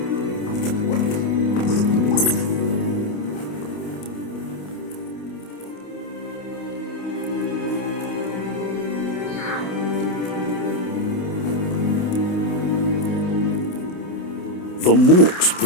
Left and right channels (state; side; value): late; right; 28 ms